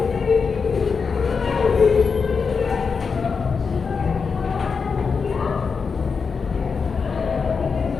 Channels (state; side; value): quieter; right; 5.4 dB